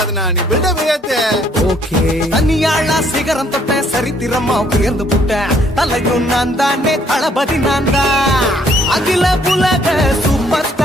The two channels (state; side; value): normal; both; correlation 0.65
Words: நீ பில்டப் ஏத்து ஓகே தனியாளா சிகரம் தொட்ட சரித்திரமா உயர்ந்து புட்டேன் தலையும் நான் தானே தளபதி நான் தான் அகில புலக சூப்பர்